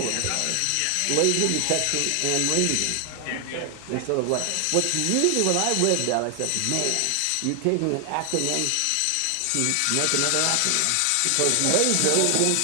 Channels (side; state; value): both; different; correlation 0.00